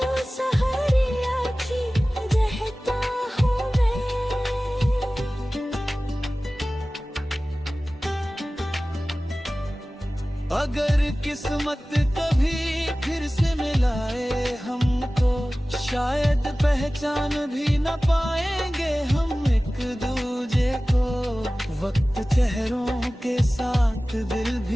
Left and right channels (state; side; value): normal; both; correlation 0.97